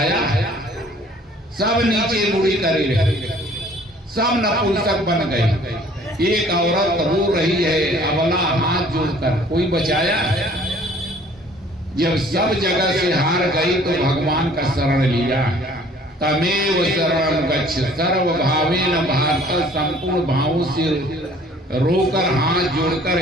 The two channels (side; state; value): both; normal; correlation 0.54